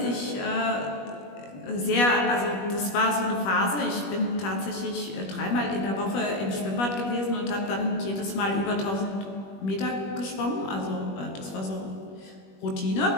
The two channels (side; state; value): right; late; 21 ms